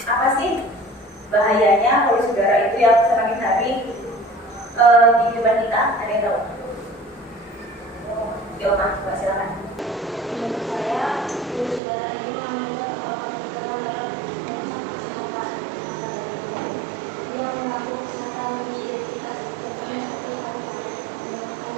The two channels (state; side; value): drops out; left; at 11.8 s